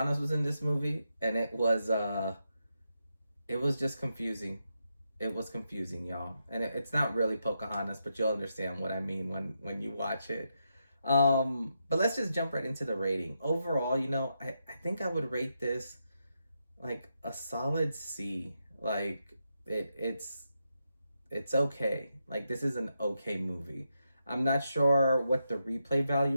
was in this movie, and it was just confusing. It was confusing, y'all, and it's not really Pocahontas, but you'll understand what I mean when you watch it. But let's just jump right into the rating. Overall, you know, I think I would rate this like a solid C. Like it's okay. Like this is an okay movie. I'm not sure what the replay value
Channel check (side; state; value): both; inverted; correlation -0.84